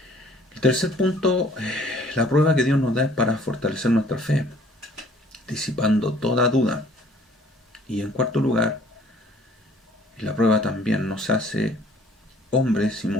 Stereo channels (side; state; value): both; normal; correlation 0.56